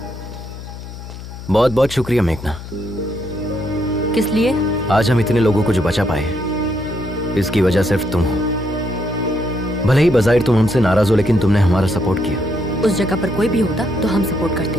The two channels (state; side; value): noise; left; hum, 12 dB below the sound